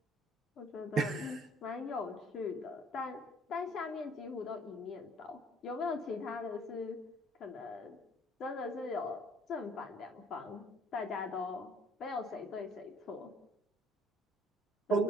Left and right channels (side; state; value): both; normal; correlation 0.58